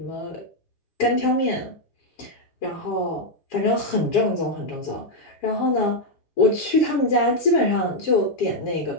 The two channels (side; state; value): right; late; 7.3 ms